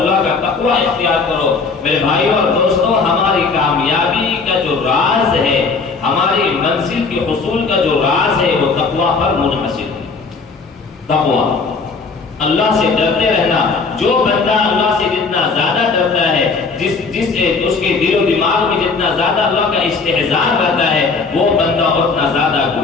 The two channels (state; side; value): quieter; right; 4.5 dB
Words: کا تقوی اختیار کرو۔ میرے بھائی اور دوستو، ہماری کامیابی کا جو راز ہے، ہماری منزل کے حصول کا جو راز ہے، وہ تقوی پر منحصر ہے۔ تقوی، اللہ سے ڈرتے رہنا۔ جو بندہ اللہ سے جتنا زیادہ ڈرتا ہے، اس کے دل و دماغ میں جتنا زیادہ اللہ کا استحضار رہتا ہے، وہ بندہ اتنا زیادہ